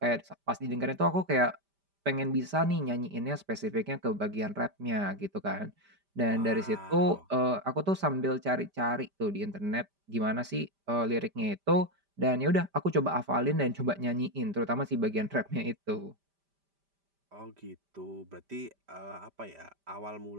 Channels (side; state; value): left; late; 5.0 ms